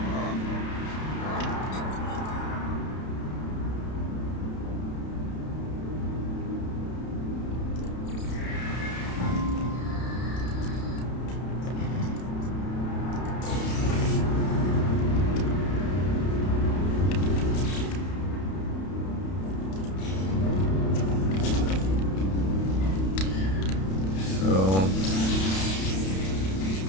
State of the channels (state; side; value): late; right; 31 ms